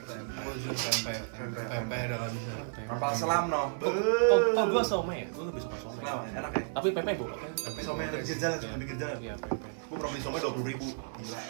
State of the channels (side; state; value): left; silent; digital silence